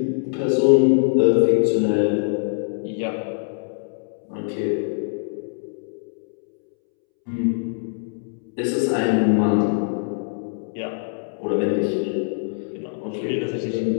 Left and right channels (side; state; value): right; silent; 63 dB below the other